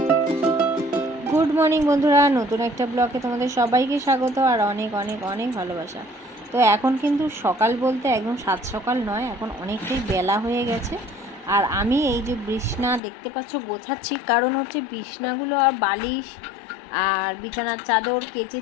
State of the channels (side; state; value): right; drops out; at 13.0 s